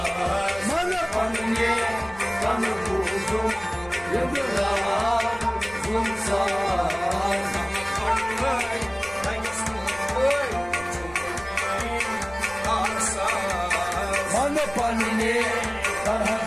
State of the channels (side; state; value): right; noise; rumble, 21 dB below the sound